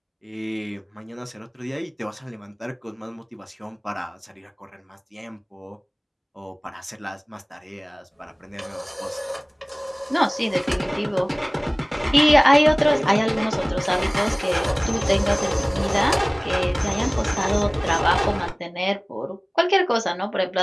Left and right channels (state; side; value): identical; both; correlation 1.00